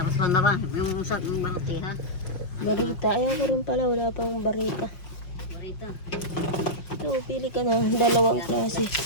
pa na ba? Yung sak ng baloti ha? Barita. Ayaw ko rin pala. Wala pang barita. Barita. Ito, pili ka na. Dalawang klase.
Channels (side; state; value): right; late; 5.6 ms